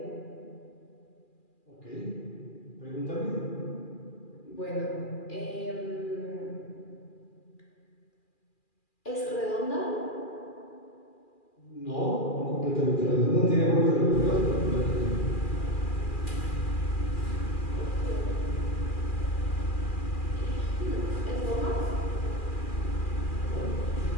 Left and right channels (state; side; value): late; right; 2.4 ms